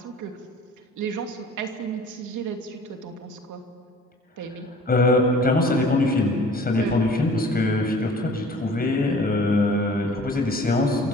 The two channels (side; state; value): both; normal; correlation 0.48